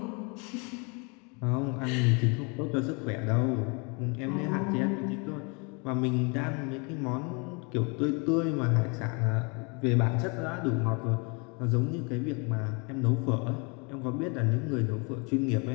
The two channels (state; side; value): quieter; right; 32.4 dB